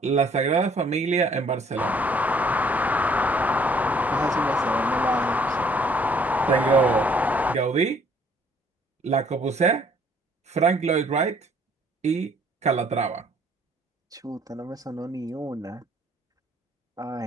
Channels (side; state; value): both; normal; correlation 0.61